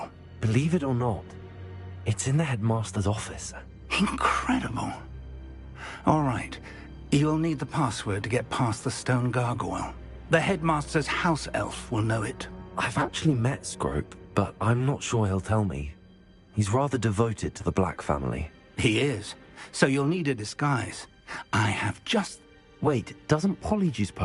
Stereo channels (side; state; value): both; identical; correlation 1.00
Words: Believe it or not, it's in the headmaster's office. Incredible. All right. You'll need the password to get past the stone gargoyle. The headmaster's house elf will know it. I've actually met Scrope, but I'm not sure he'll tell me. He's rather devoted to the Black family. He is. So you'll need a disguise. I have just... Wait, doesn't Polyjuice